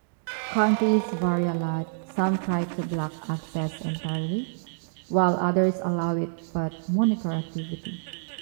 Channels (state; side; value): silent; left; digital silence